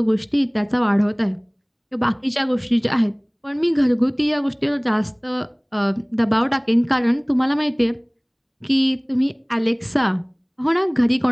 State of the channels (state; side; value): identical; both; correlation 1.00